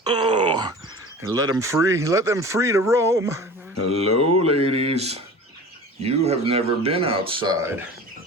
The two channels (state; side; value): normal; both; correlation 0.38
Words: Oh, and let them free to roam. Hello, ladies. You have never been outside,